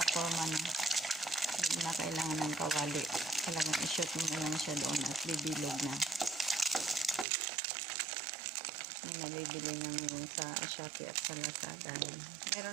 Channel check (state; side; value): drops out; left; at 7.2 s